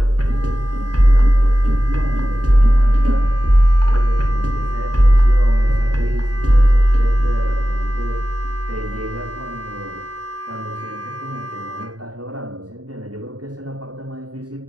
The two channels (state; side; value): late; left; 0.68 ms